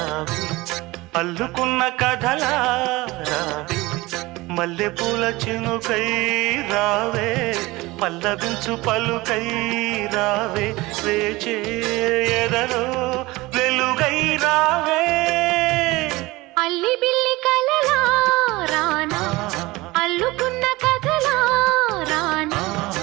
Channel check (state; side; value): quieter; left; 20.9 dB